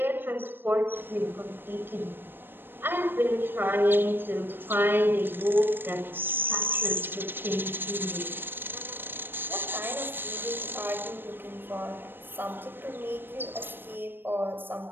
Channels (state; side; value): late; left; 0.097 ms